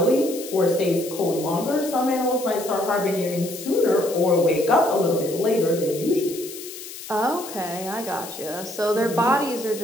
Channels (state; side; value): noise; left; hiss, 12 dB below the sound